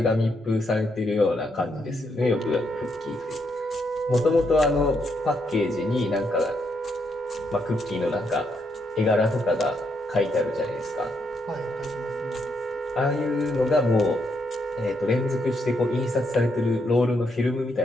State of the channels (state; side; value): normal; both; correlation 0.77